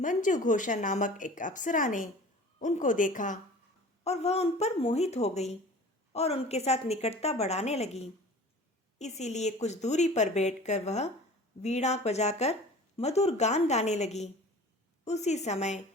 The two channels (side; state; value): both; normal; correlation 0.42